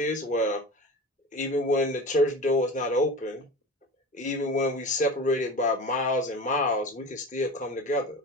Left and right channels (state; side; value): normal; both; correlation 0.32